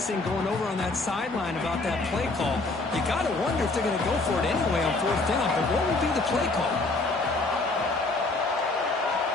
going over on that sideline about that play call. You got to wonder if they're going to go for it anyway on 4th down. But what would be the play call?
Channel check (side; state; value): right; quieter; 3.3 dB